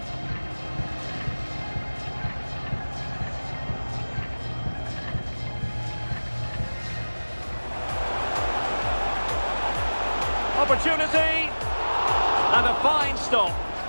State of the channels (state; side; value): inverted; both; correlation -1.00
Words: Opportunity. And a fine stop.